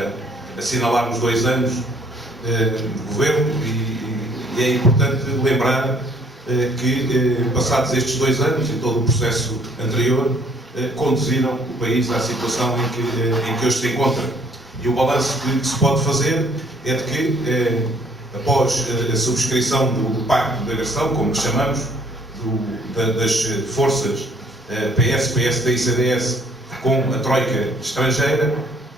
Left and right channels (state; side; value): normal; both; correlation 0.61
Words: assinalar os 2 anos de governo e é importante lembrar que, passados estes 2 anos e todo o processo anterior, conduziram o país à situação em que hoje se encontra. E o balanço que se pode fazer é de que, após a subscrição do Pacto de Agressão, como chamamos, das forças PS, PSD e CDS com a troika estrangeira,